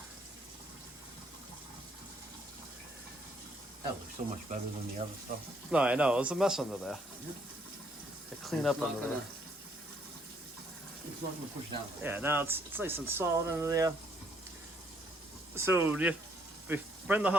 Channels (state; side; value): normal; both; correlation 0.68